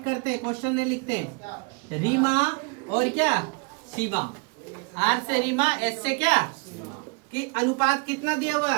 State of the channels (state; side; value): quieter; left; 32.8 dB